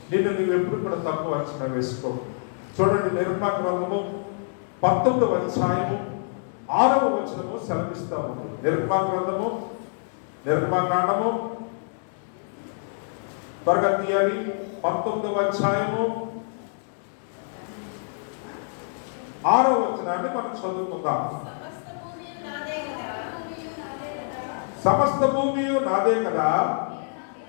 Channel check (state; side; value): silent; right; digital silence